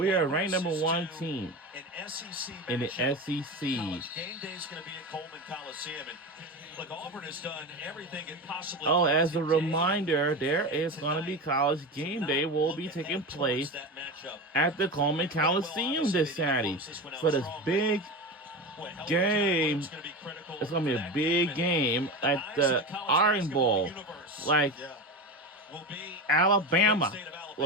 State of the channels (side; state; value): both; normal; correlation 0.24